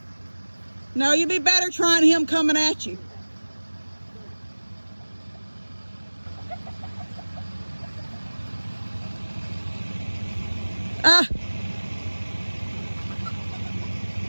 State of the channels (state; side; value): inverted; both; correlation -1.00